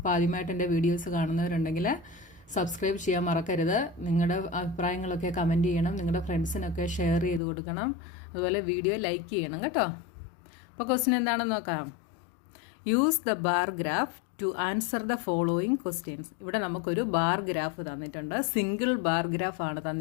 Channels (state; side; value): drops out; right; at 7.4 s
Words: ആദ്യമായിട്ട് എൻ്റെ വീഡിയോസ് കാണുന്നവരുണ്ടെങ്കിൽ സബ്സ്ക്രൈബ് ചെയ്യാൻ മറക്കരുത്. നിങ്ങളുടെ അഭിപ്രായങ്ങളൊക്കെ കമൻറ്റ് ചെയ്യണം. നിങ്ങളുടെ ഫ്രണ്ട്സിനൊക്കെ ഷെയർ ചെയ്ത് കൊടുക്കണം. അതുപോലെ വീഡിയോ ലൈക്ക് ചെയ്യണം കേട്ടോ. അപ്പോൾ ക്വസ്റ്റ്യൻ എന്താണെന്ന് നോക്കാം. Use the bar graph to answer the following questions. ഇവിടെ നമുക്കൊരു ബാർ ഗ്രാഫ് തന്നിട്ടുണ്ട്. സിംഗിൾ ബാർ ഗ്രാഫ് ആണ്